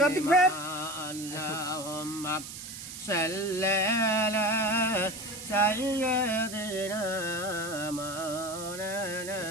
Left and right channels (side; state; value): right; noise; hiss, 11 dB below the sound